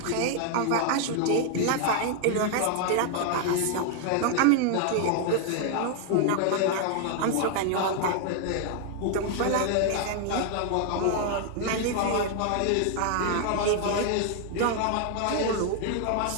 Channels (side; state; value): both; different; correlation 0.00